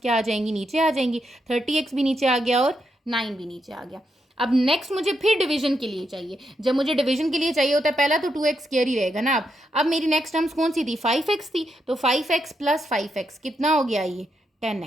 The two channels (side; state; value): both; normal; correlation 0.82